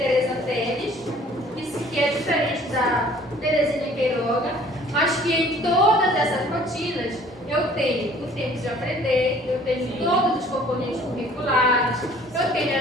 Teles, que é diferente da Terezinha Queiroga, mas que em todas essas rotinas eu tenho o tempo de aprender, eu tenho todos os componentes curriculares, eu tenho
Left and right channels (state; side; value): normal; both; correlation 0.53